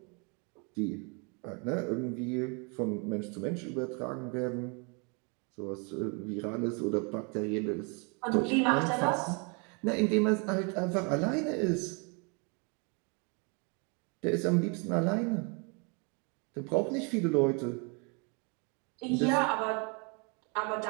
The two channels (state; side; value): quieter; left; 34.2 dB